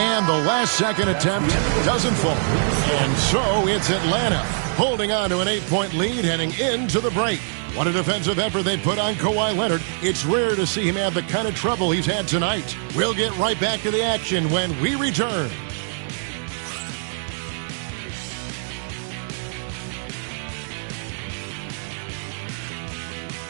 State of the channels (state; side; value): silent; left; digital silence